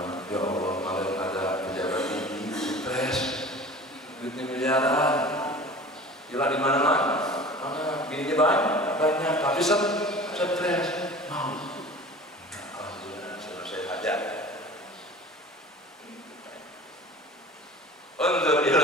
Ya Allah, kalau ada pejabat tinggi, stres, duitnya miliaran, gila di mana-mana, bininya banyak, tapi stres, mau. Alhamdulillah, selesai hajat. Untuk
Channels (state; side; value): normal; both; correlation 0.40